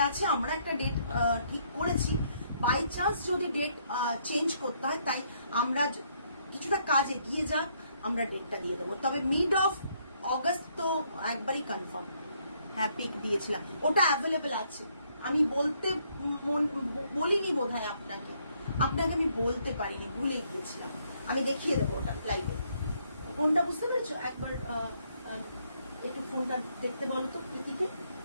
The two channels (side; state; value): both; inverted; correlation -0.70